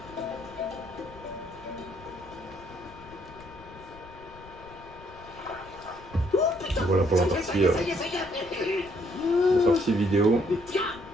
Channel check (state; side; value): noise; left; rumble, 20 dB below the sound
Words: Voilà pour la partie vidéo.